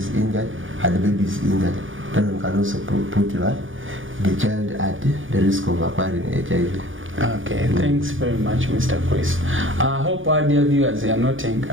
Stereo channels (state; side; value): late; left; 0.57 ms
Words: injured and the baby is injured. That one can also put the child at the risk of acquiring HIV. Okay, thanks very much, Mr. Chris. I hope our dear viewers are noting.